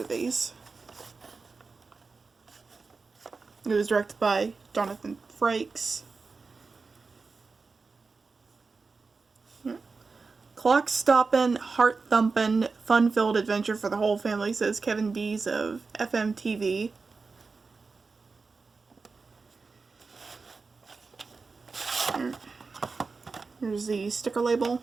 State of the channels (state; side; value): quieter; left; 4.4 dB